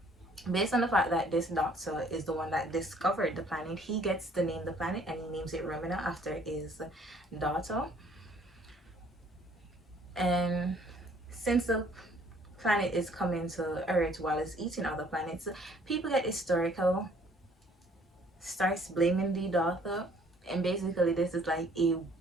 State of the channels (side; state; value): both; normal; correlation 0.59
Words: based on the fact that this doctor is the one that discovered the planet, he gets to name the planet and he names it Ramuna after his daughter. And since the planet is coming to Earth while it's eating other planets, people get hysterical, starts blaming the daughter, and basically this is like a